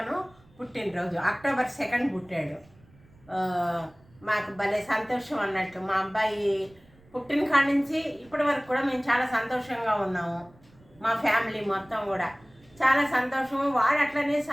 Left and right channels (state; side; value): noise; right; rumble, 28 dB below the sound